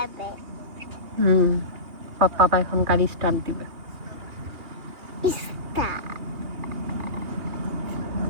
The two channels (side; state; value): left; late; 2.9 ms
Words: পাপা এখন গাড়ি স্টার্ট দিবে।